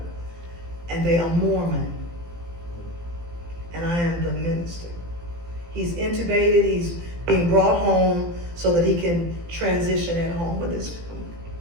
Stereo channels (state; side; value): late; left; 18 ms